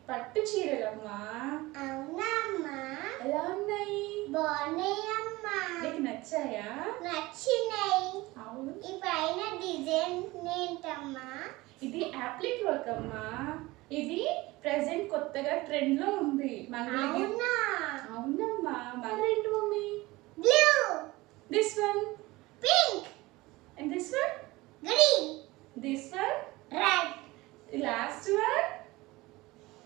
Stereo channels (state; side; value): quieter; left; 20.5 dB